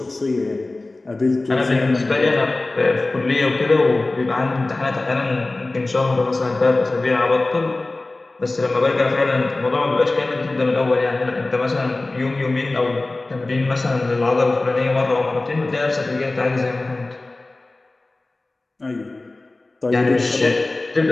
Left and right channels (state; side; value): quieter; right; 3.1 dB